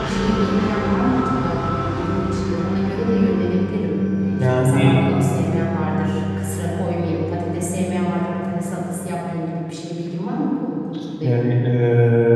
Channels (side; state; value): both; identical; correlation 1.00